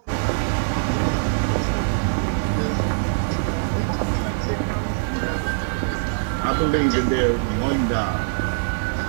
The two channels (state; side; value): silent; left; 64 dB below the other